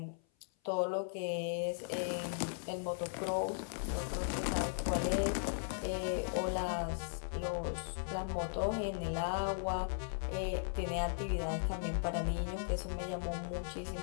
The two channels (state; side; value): silent; right; 53 dB below the other